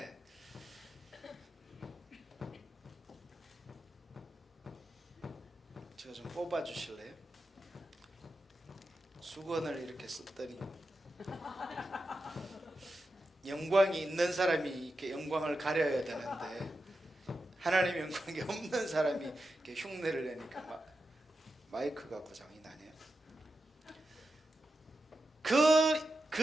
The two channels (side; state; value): both; normal; correlation 0.90